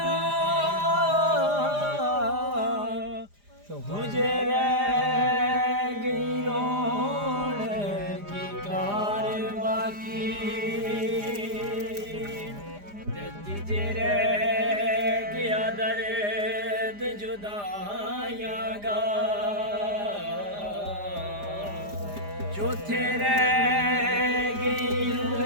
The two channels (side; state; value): left; late; 4.9 ms